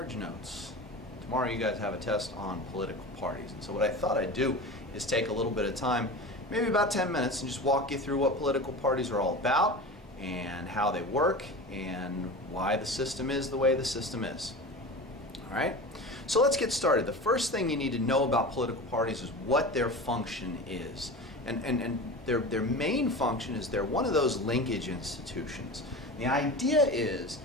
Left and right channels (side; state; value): both; normal; correlation 0.31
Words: Notes. Tomorrow you guys have a test on political parties, and so what I thought I'd do is take a little bit of time, maybe about 10 minutes, and just walk you through what political parties are all about and how they work and why the system is the way the system is. Alright, so let's get started. The first thing you need to know about political parties is what their function is. And their main function is they're one of those linkage institutions. The idea is